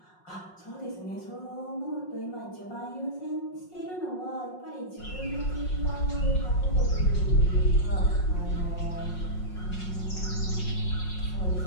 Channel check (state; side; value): late; right; 5.5 ms